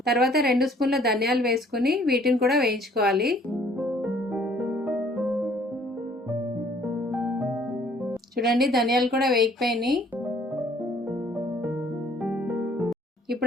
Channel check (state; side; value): normal; both; correlation 0.58